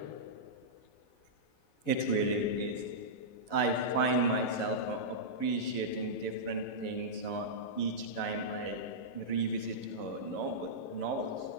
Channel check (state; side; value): late; right; 11 ms